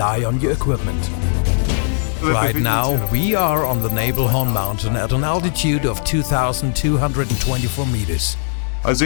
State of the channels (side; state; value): right; silent; 67 dB below the other